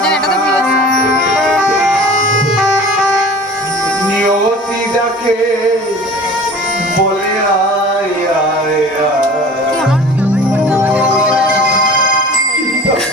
জানে, এটা তো বুঝেছি। নিয়তি ডাকে বলে আয় আয় আয়,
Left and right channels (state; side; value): normal; both; correlation 0.42